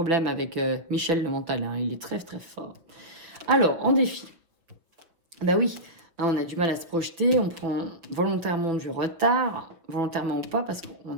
avec Michel le mental. Hein. Il est très, très fort. Alors, en défi. Bah oui, hein, on a du mal à se projeter. On prend volontairement du retard. Volontairement ou pas, parce qu'on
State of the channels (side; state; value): left; late; 5.9 ms